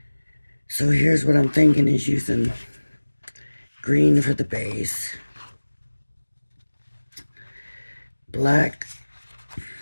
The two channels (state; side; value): inverted; both; correlation -1.00